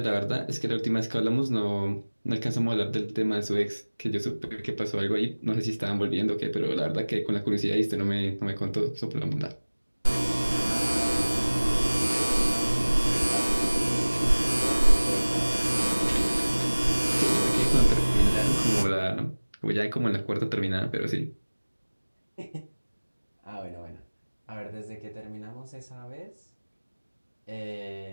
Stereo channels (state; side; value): inverted; both; correlation -1.00